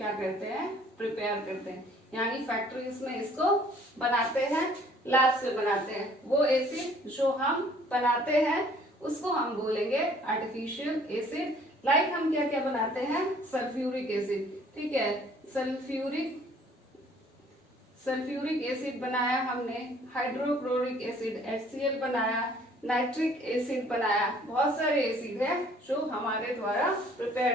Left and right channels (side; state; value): both; normal; correlation 0.57